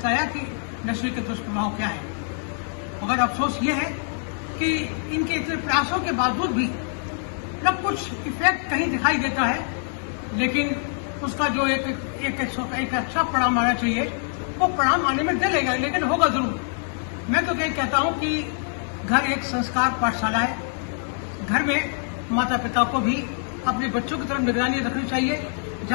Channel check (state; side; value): silent; right; 62 dB below the other